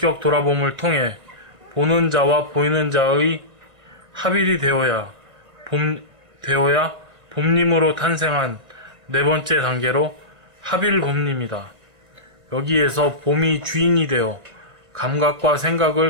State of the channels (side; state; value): left; late; 1.7 ms